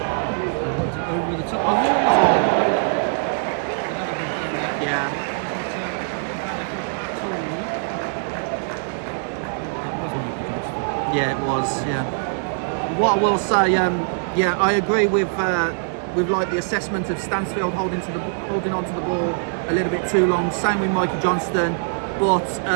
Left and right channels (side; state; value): left; silent; digital silence